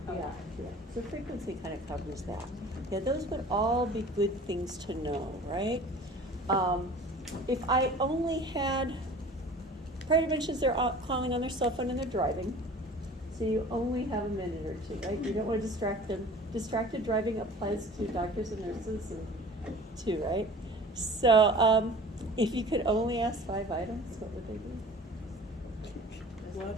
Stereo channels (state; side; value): normal; both; correlation 0.43